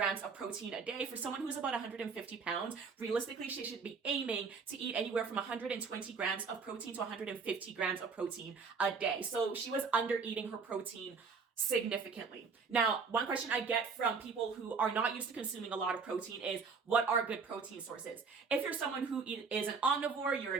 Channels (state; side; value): quieter; left; 5.1 dB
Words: of protein a day. For someone who's about 150 pounds, realistically she should be aiming to eat anywhere from 120 grams of protein to 150 grams of protein a day. So she was under eating her protein significantly. Now, one question I get from people who are not used to consuming a lot of protein is, what are good protein sources? If you're someone who is an omnivore, you're